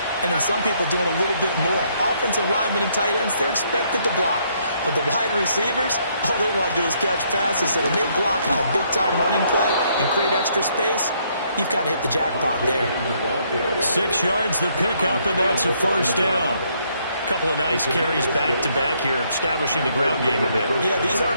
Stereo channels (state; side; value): inverted; both; correlation -0.70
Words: and then some people doing a little bit more. Offensive linemen and tight ends, they're expected to block. But the wide receivers, all they want to do is catch passes. So when they block on a big-time running play and create extra space, you've kind of hit the jackpot there. 6 yards the pickup, and that's a first down. Couple of nice carries back-to-back here, establishing the ground game a bit. Yeah, these